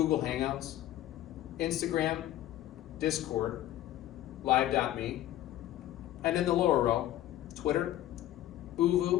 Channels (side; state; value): right; quieter; 13.6 dB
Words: Hangouts, Instagram, Discord, Live.me, and in the lower row, Twitter,